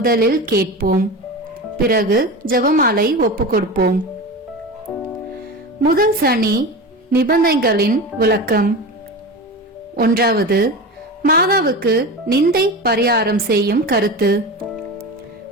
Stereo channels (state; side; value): normal; both; correlation 0.27